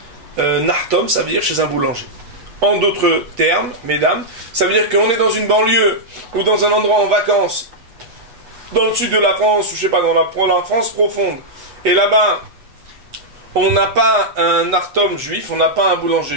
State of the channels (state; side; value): late; left; 8.2 ms